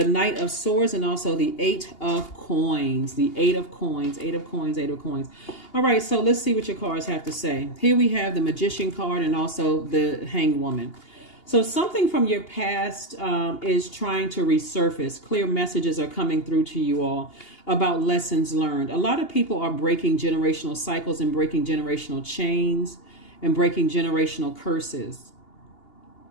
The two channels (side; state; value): right; late; 2.8 ms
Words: Knight of Swords, and also the Eight of Coins. The Eight of Coins. Eight of Coins. Eight of Coins. All right. So let's see what your cards have to say. Here we have the Magician card and also the Hanged Woman. So something from your past is trying to resurface. Clear messages are coming through to you all about lessons learned. A lot of people are breaking generational cycles and breaking generational chains and breaking generational curses.